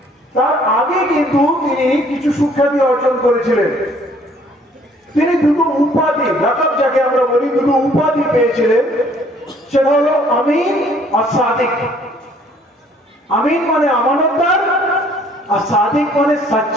আগে কিন্তু তিনি কিছু সুখ্যাতি অর্জন করেছিলেন। তিনি দুটো উপাধি, লাকাব যাকে আমরা বলি, দুটো উপাধি পেয়েছিলেন। সেটা হলো আমিন আর সাদিক। আমিন মানে আমানতদার, আর সাদিক মানে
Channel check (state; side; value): normal; both; correlation 0.60